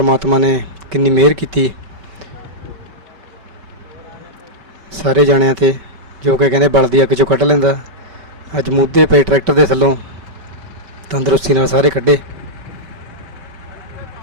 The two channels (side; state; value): left; late; 5.2 ms